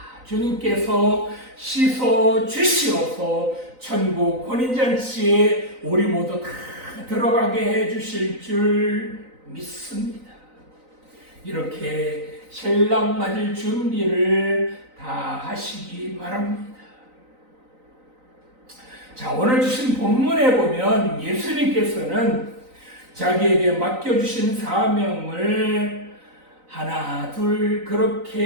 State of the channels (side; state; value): left; late; 3.9 ms